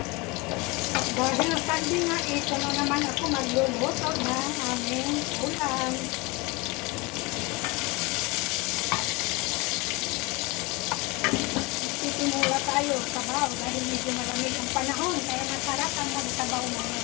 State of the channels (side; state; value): right; quieter; 25.2 dB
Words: Dahil sabi nga, ito na naman ako magluluto ng aming ulam. Titimula tayo sabaw dahil medyo malamig ang panahon, kaya masarap ang magsabaw naman.